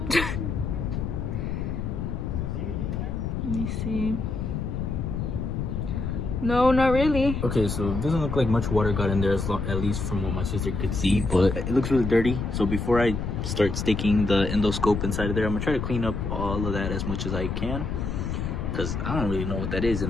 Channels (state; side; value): noise; left; rumble, 3 dB below the sound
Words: Let me see. No, not really. Okay, so it doesn't look like much water got in there, at least from what my sister could see, but it looks really dirty. So before I start sticking the endoscope inside of there, I'm gonna try to clean up all of that as much as I can, because I don't really know what that is,